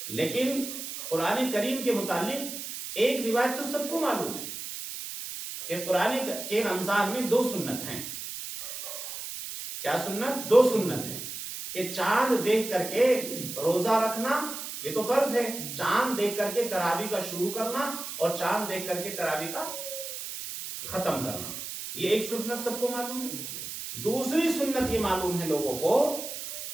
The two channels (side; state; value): right; noise; hiss, 8 dB below the sound